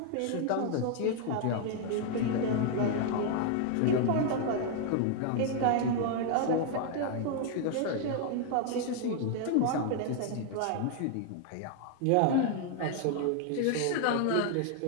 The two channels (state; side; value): different; both; correlation 0.00